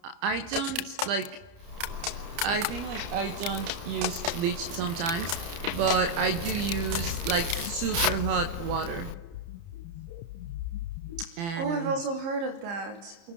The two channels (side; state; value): left; late; 30 ms